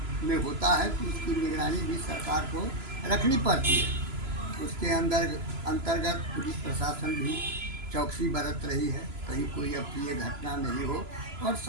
में होता है तो उसकी निगरानी भी सरकार को रखनी पड़ती है। उसके अंतर्गत पुलिस प्रशासन भी चौकसी बरत रही है, कहीं कोई अप्रिय घटना नहीं हो और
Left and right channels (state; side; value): late; left; 3.0 ms